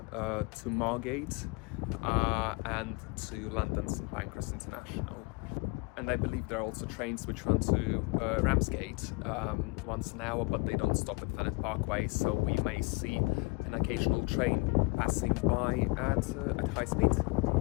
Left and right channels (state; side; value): quieter; right; 27.4 dB